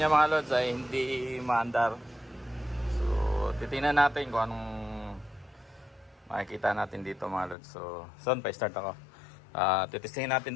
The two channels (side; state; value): right; drops out; at 7.6 s